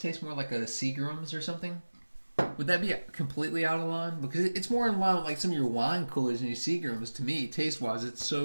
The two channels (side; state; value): both; inverted; correlation -1.00